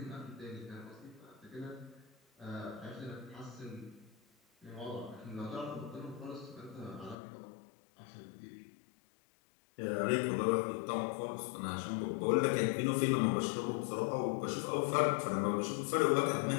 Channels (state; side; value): drops out; right; at 7.2 s